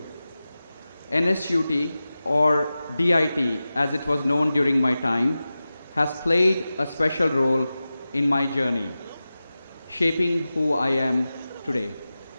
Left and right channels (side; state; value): both; inverted; correlation -0.95